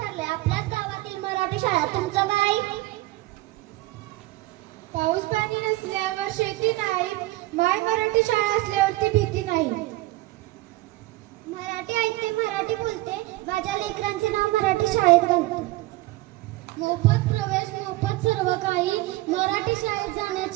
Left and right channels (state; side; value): quieter; left; 19.0 dB